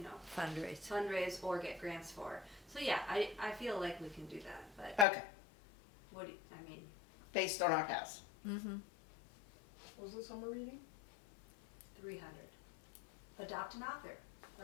Fundraise. fundraise or get grants for. So yeah, I feel like we can do that, but Okay. based on our past. Mm-hmm. What was the summer reading? 300. Adopt an author.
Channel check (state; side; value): drops out; right; at 5.1 s